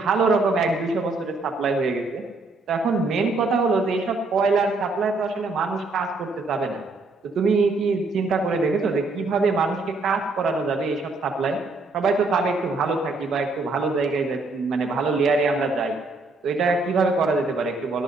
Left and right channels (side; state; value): left; quieter; 3.4 dB